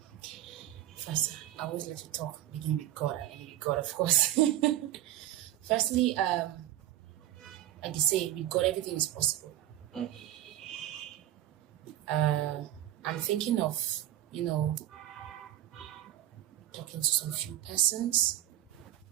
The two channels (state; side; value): quieter; left; 13.3 dB